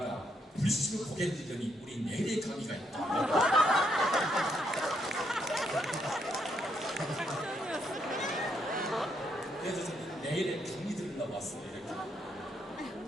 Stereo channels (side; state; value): both; normal; correlation 0.75